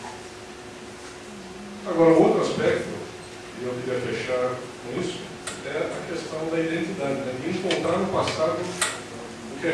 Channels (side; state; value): both; identical; correlation 1.00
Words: Agora, um outro aspecto, e eu queria fechar com isso, é a questão da identidade, né? De encontrar no passado o que a